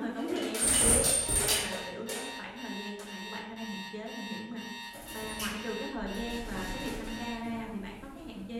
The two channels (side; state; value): both; identical; correlation 1.00